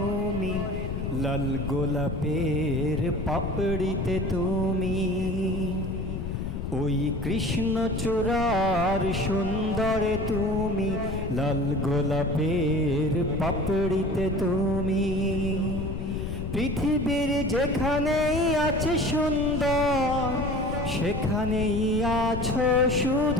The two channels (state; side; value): noise; left; rumble, 4 dB below the sound